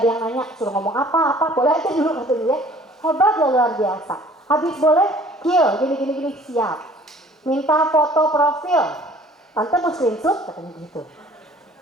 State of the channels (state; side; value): normal; both; correlation 0.52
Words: yang nanya, suruh ngomong apa, boleh aja dulu katanya ya. Hebat ya, luar biasa. Habis boleh, kill, gini-gini, siap. Minta foto profil, Tante mau screenshot, katanya gitu.